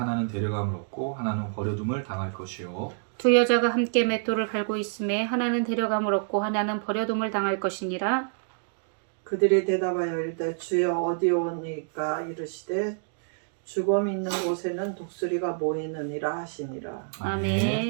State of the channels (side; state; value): left; silent; digital silence